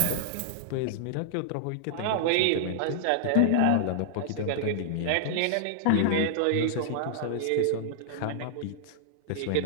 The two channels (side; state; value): both; different; correlation -0.01